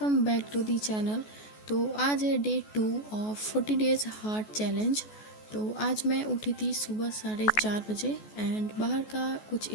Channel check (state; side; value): late; right; 14 ms